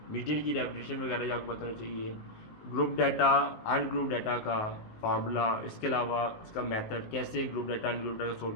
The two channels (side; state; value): right; late; 19 ms